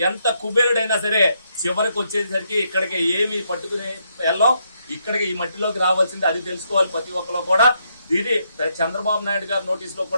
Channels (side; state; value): both; inverted; correlation -0.77